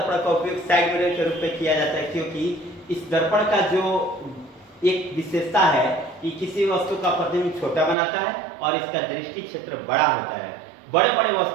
का उपयोग साइड मिरर के रूप में किया जाता है क्योंकि इस दर्पण का जो एक विशेषता है कि किसी वस्तु का प्रतिबिंब छोटा बनाता है और इसका दृष्टि क्षेत्र बड़ा होता है। बड़े बड़े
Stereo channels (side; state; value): left; drops out; at 8.0 s